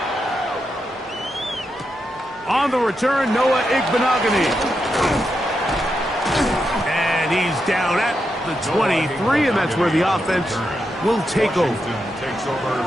On the return, Noah Igbenogany. And he's down at the 23, and that's where the offense will take over.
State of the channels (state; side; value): normal; both; correlation 0.85